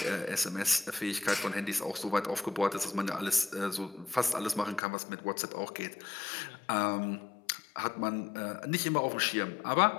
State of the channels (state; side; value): drops out; right; at 4.8 s